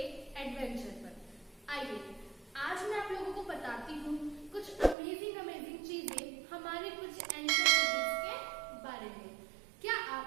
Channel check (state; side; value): drops out; left; at 5.0 s